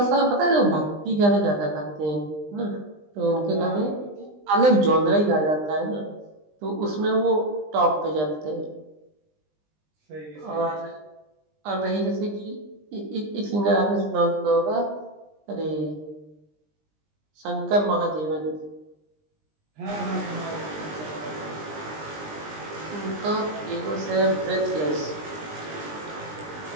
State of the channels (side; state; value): left; late; 20 ms